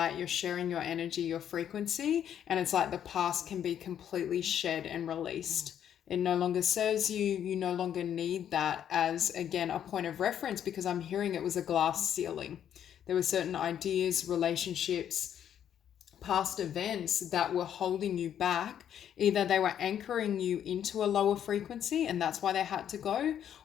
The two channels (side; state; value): right; quieter; 9.7 dB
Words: you're sharing your energy, your frequency, and it's like the past can be completely shed and released. It no longer serves you. You no longer need that as, again, a point of reference, because I'm hearing it was a glass ceiling. There were certain ideas, relationships, past events that were holding you back. Either they were anchoring you into a lower frequency and that's why they had to go,